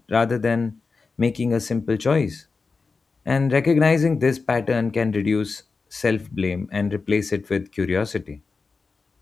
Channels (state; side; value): quieter; right; 4.4 dB